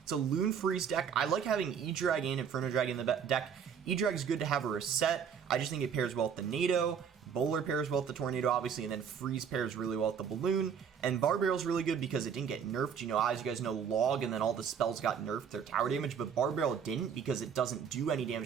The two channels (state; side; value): quieter; left; 7.3 dB